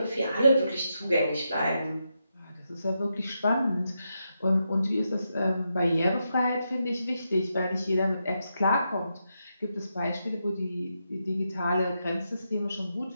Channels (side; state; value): both; inverted; correlation -0.84